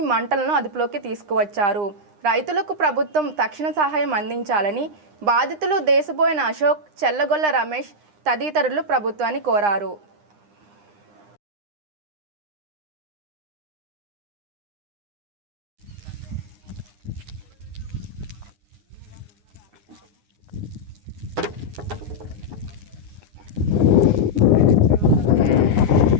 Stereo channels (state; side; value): late; left; 9.8 ms